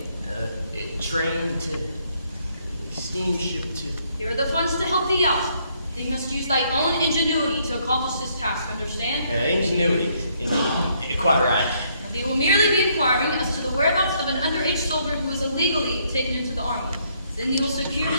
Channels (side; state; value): both; inverted; correlation -0.70